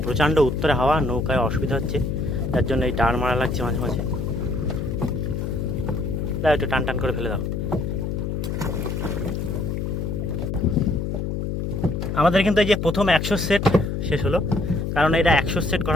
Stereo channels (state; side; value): noise; left; hum, 2 dB below the sound